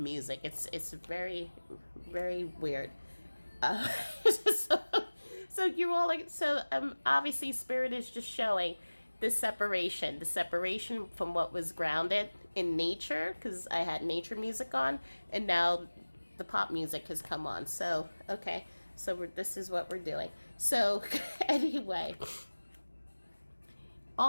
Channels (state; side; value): inverted; both; correlation -1.00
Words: It's very, very weird. So, so you all like, so obviously spirit is just showing the separation from what was grounded in nature, because I had nature music on, and now the pop music has come on. So okay, so this is what we're doing. So anyway,